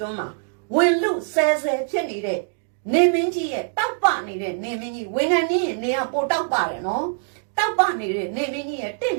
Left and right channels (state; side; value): silent; left; 62 dB below the other